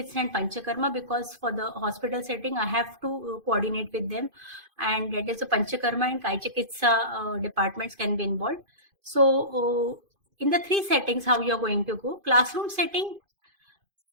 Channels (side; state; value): left; late; 2.5 ms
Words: and Panchakarma, because for the hospital setting I have to coordinate with them, and that is the Panchakarma and Kai Chikitsa departments can be involved. So in the 3 settings, how you are going to go. Classroom setting,